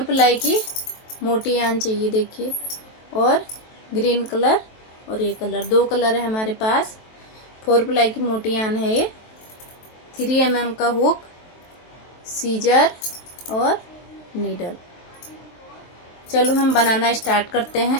प्लाई की मोटी यान चाहिए। देखिए, और ग्रीन कलर और ये कलर, 2 कलर है हमारे पास। 4 प्लाई की मोटी यान है ये। 3 mm का हुक, सीजर और नीडल। चलो हम बनाना स्टार्ट करते हैं।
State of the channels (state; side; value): late; right; 23 ms